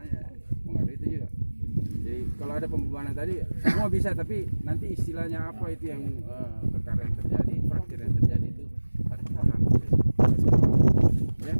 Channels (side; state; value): both; inverted; correlation -1.00